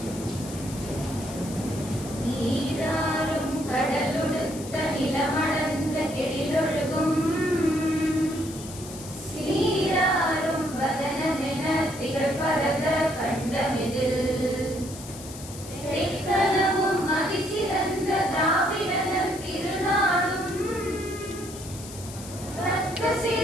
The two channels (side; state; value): left; noise; hiss, 14 dB below the sound